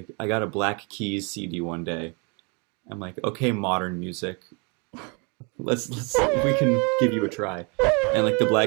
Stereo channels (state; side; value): quieter; left; 32.7 dB